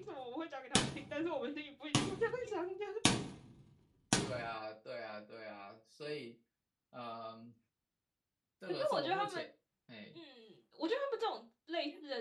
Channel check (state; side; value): identical; both; correlation 1.00